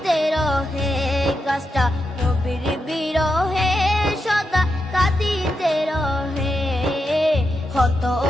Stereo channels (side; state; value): both; normal; correlation 0.86